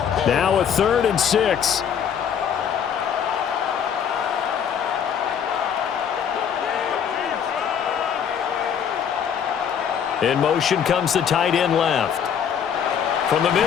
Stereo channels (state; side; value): quieter; right; 8.0 dB